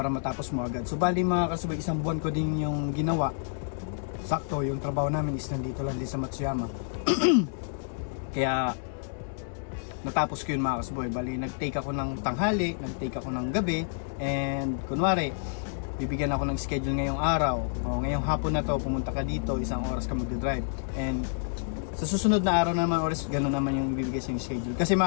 matapos mo agad. So bali mga Karsboy, isang buwan ko din yung ginawa. Sakto, yung trabaho namin is nandito lang din sa Matsuyama. Kaya natapos ko yun mga Karsboy. Bali nag-take ako ng tanghali, nag-take ako ng gabi, and kunwari bibigyan ako ng schedule ngayong araw, o ngayong hapon na to pumunta ka dito, isang oras ka mag-drive, and sa susunod na araw naman oras, gano'n naman yung ibibigay sa yung schedule. Kasi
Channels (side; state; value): right; silent; digital silence